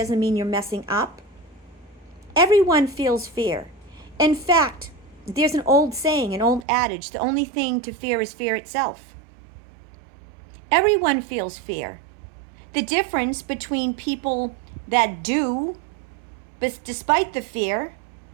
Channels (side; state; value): left; drops out; at 6.7 s